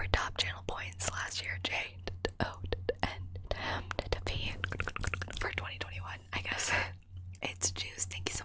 top channel points last year, J. O and P for 2021, I guess. It's Juice. Thank you so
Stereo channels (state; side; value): identical; both; correlation 1.00